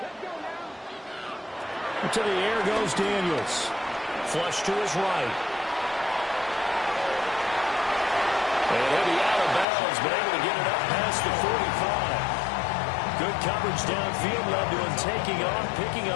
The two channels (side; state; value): right; drops out; at 9.7 s